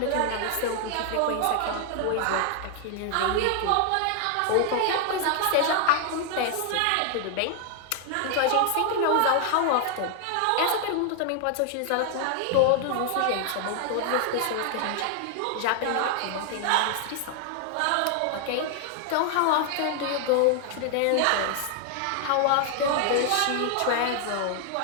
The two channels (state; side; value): different; both; correlation 0.00